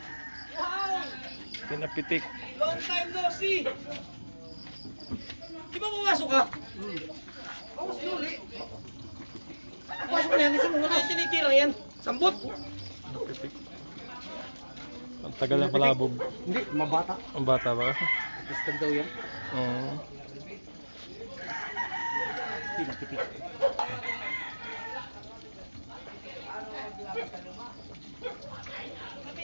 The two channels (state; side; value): inverted; both; correlation -1.00